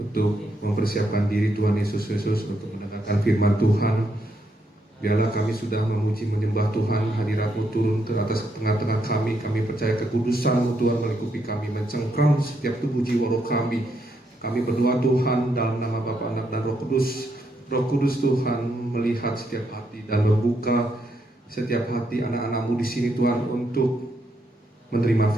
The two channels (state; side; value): normal; both; correlation 0.77